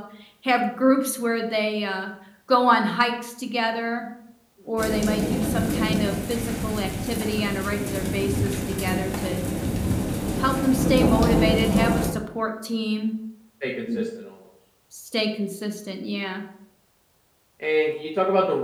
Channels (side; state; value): both; identical; correlation 1.00